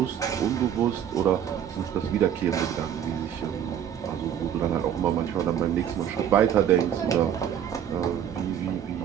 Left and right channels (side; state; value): left; quieter; 9.4 dB